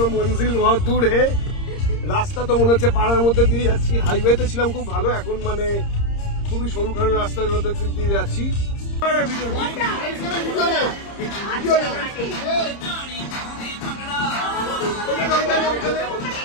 মঞ্জিল বহুত দূর হে। রাস্তা তো মনে হচ্ছে পাড়ার মধ্যে দিয়ে যাচ্ছি। হাইওয়েতে ছিলাম খুব ভালো, এখন মানে খুবই সরুখারু রাস্তার মধ্যে দিয়ে যাচ্ছি।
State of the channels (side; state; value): right; late; 30 ms